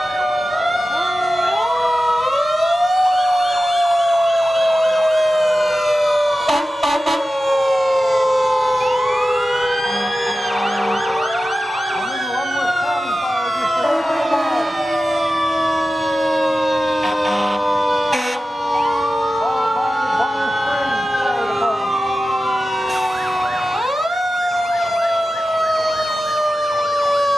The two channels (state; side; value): normal; both; correlation 0.94